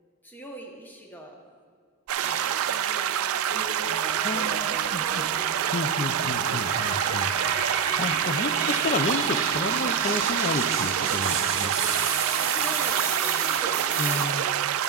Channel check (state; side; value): quieter; left; 6.2 dB